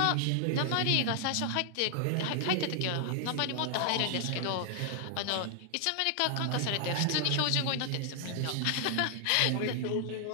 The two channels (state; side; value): different; both; correlation 0.00